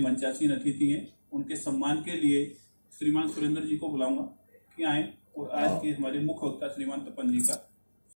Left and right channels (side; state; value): both; inverted; correlation -1.00